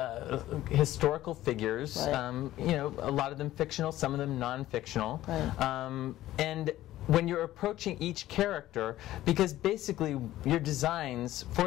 historical figures. You know, a lot of them fictional, some of them non-fictional, and when you're approaching each character, because basically your designs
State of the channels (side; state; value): right; quieter; 14.6 dB